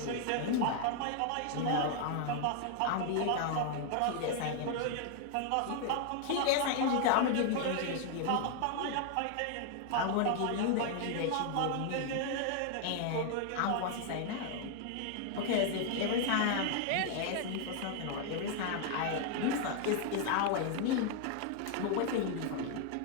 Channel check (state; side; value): different; both; correlation 0.00